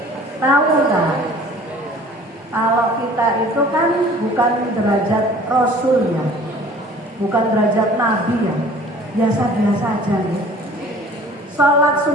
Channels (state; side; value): normal; both; correlation 0.49